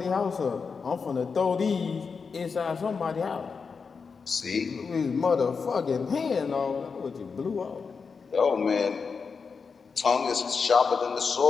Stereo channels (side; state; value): right; quieter; 5.3 dB